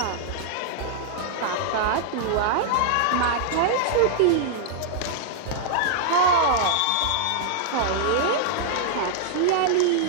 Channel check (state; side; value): different; both; correlation -0.01